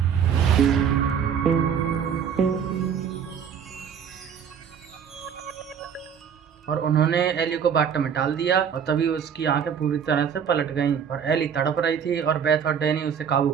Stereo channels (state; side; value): quieter; left; 7.6 dB